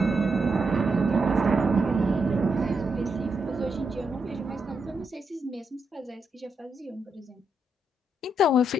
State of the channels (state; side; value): normal; both; correlation 0.81